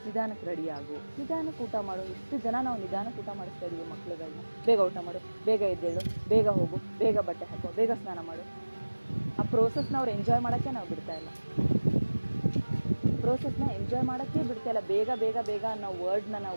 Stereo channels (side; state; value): both; inverted; correlation -1.00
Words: ನಿಧಾನಕ್ಕೆ ರೆಡಿ ಆಗು, ನಿಧಾನಕ್ಕೆ ಊಟ ಮಾಡು. ಎಷ್ಟು ಜನ ನಾವು ನಿಧಾನಕ್ಕೆ ಊಟ ಮಾಡಿಸ್ತಾ ಇದ್ದೀವಿ ಮಕ್ಳುಗಳನ್ನ. ಬೇಗ ಊಟ ಮಾಡು, ಬೇಗ ಎದ್ದೇಳು, ಬೇಗ ಹೋಗು, ಬೇಗ ಬಟ್ಟೆ ಹಾಕೋ, ಬೇಗ ಸ್ನಾನ ಮಾಡು. ಆ ಪ್ರೋಸೆಸ್ನ ಅವ್ರು ಎಂಜಾಯ್ ಮಾಡೋಕ್ಕೆ ನಾವು ಬಿಡ್ತಾ ಇಲ್ಲ. ಪ್ರೋಸೆಸ್ನ ಎಂಜಾಯ್ ಮಾಡೋಕ್ಕೆ ಬಿಡ್ತಾ ಇಲ್ಲ. ಬೇಗ ಬೇಗ ಬೇಗ ಅನ್ನೋ ವರ್ಡ್ನ